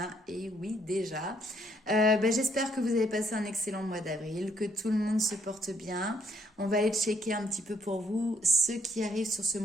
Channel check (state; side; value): normal; both; correlation 0.70